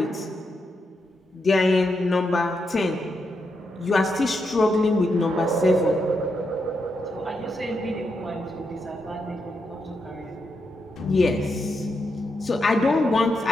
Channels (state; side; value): normal; both; correlation 0.83